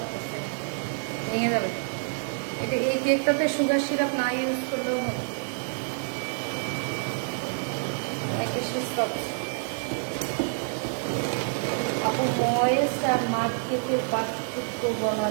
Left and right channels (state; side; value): silent; left; 60 dB below the other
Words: ভেঙে যাবে। এটা এই কেকটাতে সুগার সিরাপ না ইউজ করলেও হবে, অনেক বেশি সফট। আপু ময়েস্ট আর মাঠ কেকের পার্থক্য বলা